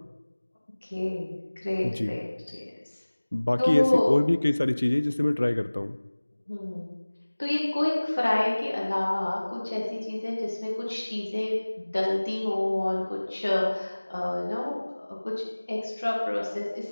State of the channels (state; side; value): inverted; both; correlation -1.00